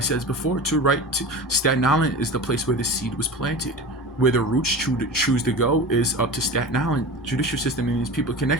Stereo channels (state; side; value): normal; both; correlation 0.31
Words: before too, right? Staten Island is the place where the seed was planted. Where the roots choose to go is up to Staten Island judicial system and these people